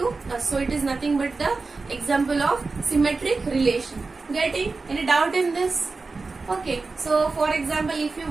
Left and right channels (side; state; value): left; quieter; 3.9 dB